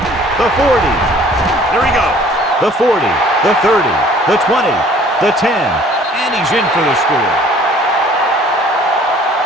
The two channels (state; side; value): normal; both; correlation 0.54